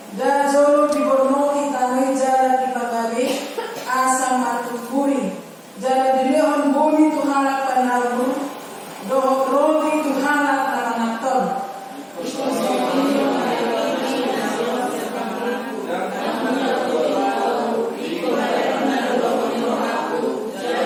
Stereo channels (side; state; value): both; identical; correlation 1.00